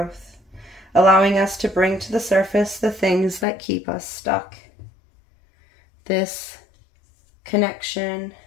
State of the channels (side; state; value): right; drops out; at 3.5 s